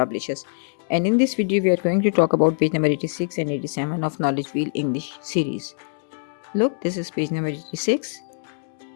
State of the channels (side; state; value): right; silent; digital silence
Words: and in this video, we are going to talk about page number 86 and 87 of Knowledge Wheel English series. Look, this is page number 86.